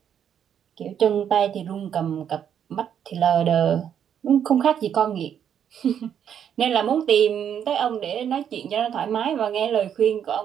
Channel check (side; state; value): left; quieter; 8.8 dB